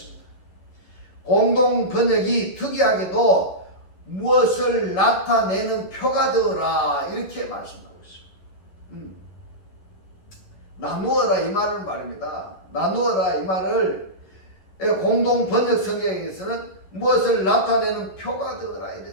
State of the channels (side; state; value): right; late; 11 ms